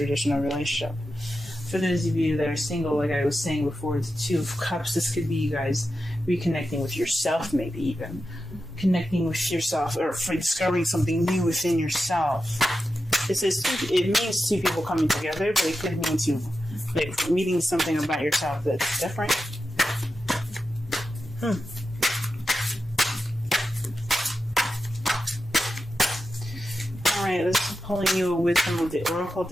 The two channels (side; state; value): both; normal; correlation 0.90